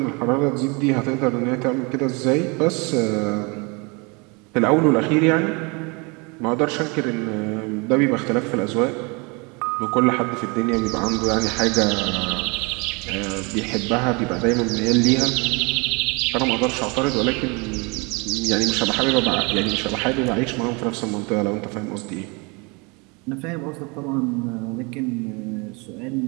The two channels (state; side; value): quieter; left; 29.7 dB